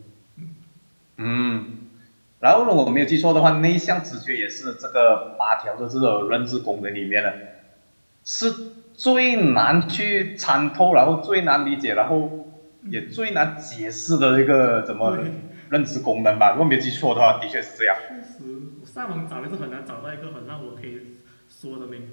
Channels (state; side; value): inverted; both; correlation -1.00